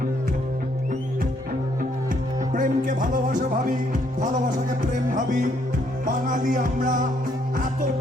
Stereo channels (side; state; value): both; normal; correlation 0.70